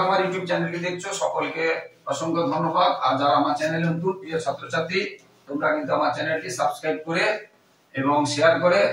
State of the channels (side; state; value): both; identical; correlation 1.00